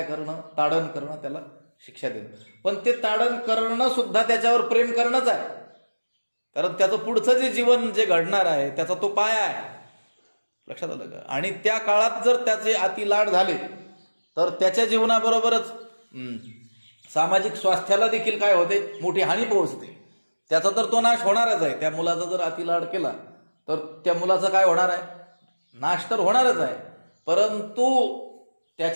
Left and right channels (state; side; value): inverted; both; correlation -1.00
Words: करणं, ताडण करणं, त्याला शिक्षा देणं. पण ते ताडण करणं सुद्धा त्याच्यावर प्रेम करणंच आहे. कारण त्याचं पुढचं जे जीवन जे घडणार आहे त्याचा तो पाया आहे. लक्षात आलं का? आणि त्या काळात जर त्याचे अति लाड झाले तर त्याच्या जीवनाबरोबरच सामाजिक स्वास्थ्याला देखील काय होते, मोठी हानी पोहोचते. त्याचा तर तो नाश होणारच आहे. त्या मुलाचा जर अतिलाड केला तर त्या मुलाचा काय होणार आहे, नाश तर होणारच आहे. परंतु